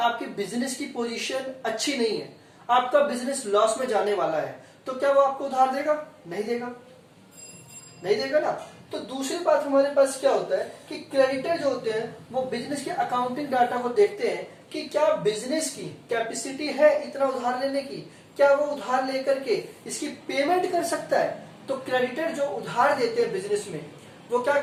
बिजनेस की पोजीशन अच्छी नहीं है, आपका बिजनेस लॉस में जाने वाला है, तो क्या वो आपको उधार देगा? नहीं देगा, नहीं देगा ना। तो दूसरी बात हमारे पास क्या होता है कि क्रेडिटर जो होते हैं वो बिजनेस के अकाउंटिंग डाटा को देखते हैं कि क्या बिजनेस की कैपेसिटी है इतना उधार लेने की, क्या वो उधार लेकर के इसकी पेमेंट कर सकता है। तो क्रेडिटर जो उधार देते हैं बिजनेस में, वो क्या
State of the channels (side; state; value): both; identical; correlation 1.00